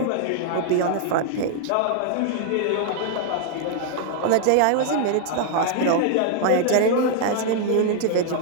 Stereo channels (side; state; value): both; different; correlation 0.00